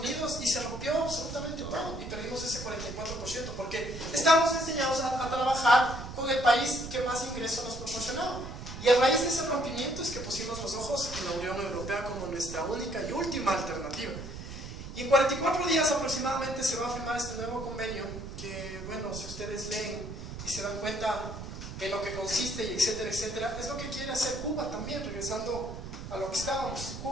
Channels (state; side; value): noise; right; rumble, 10 dB below the sound